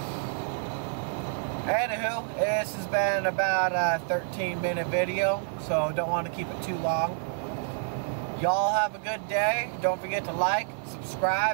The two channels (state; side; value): silent; left; digital silence